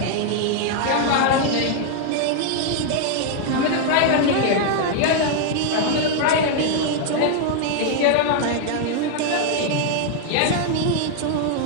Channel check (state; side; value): different; both; correlation 0.00